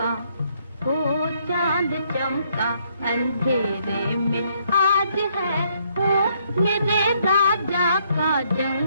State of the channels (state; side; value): inverted; both; correlation -0.70